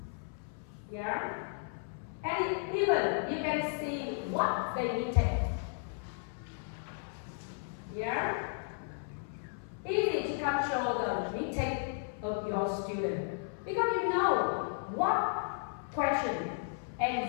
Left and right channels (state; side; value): silent; right; 55 dB below the other